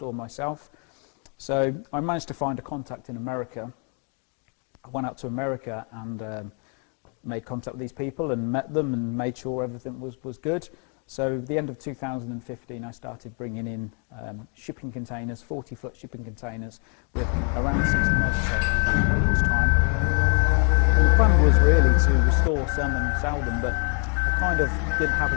myself. So I managed to find a contact in America. I went out to America and made contact with these people and met them and made sure everything was good. So at the end of 2015, I started bringing in shipping containers, 40-foot shipping containers with around 60 motorcycles in each time. And the plan was really to restore some and sell them, but I kind of didn't have a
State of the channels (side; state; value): right; quieter; 38.8 dB